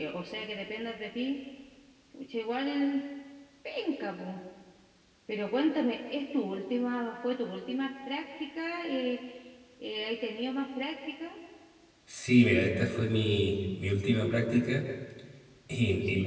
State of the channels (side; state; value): both; identical; correlation 1.00